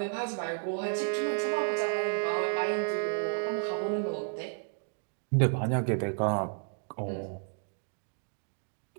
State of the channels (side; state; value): left; silent; digital silence